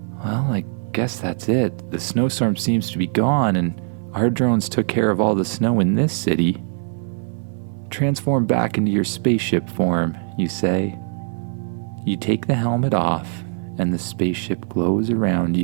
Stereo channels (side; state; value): left; silent; 64 dB below the other